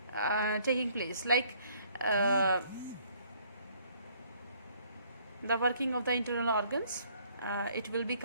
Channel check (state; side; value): inverted; both; correlation -0.62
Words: taking place, like the working of the internal organs. It will be